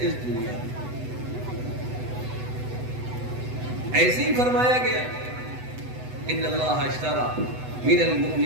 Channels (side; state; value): left; late; 8.0 ms